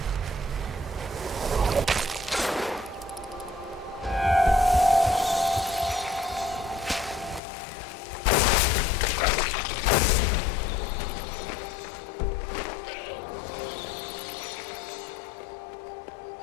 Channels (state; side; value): drops out; right; at 7.4 s